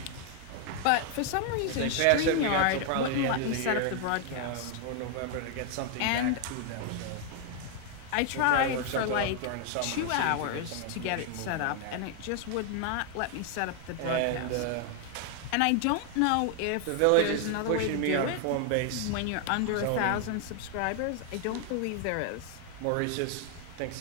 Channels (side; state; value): both; different; correlation 0.00